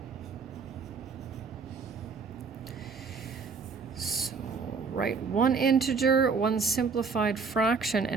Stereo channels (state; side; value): quieter; left; 5.1 dB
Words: Write one integer, one simplified fraction,